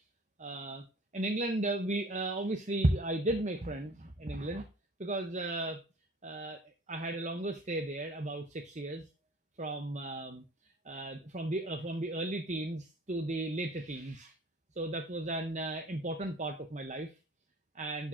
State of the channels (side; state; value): both; normal; correlation 0.50